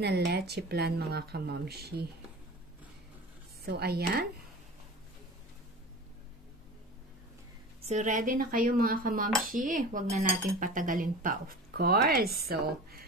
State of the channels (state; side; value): normal; both; correlation 0.35